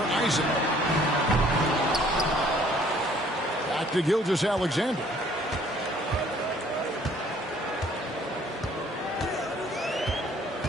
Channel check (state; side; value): normal; both; correlation 0.59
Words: Isaac. Back to Gilgeous-Alexander.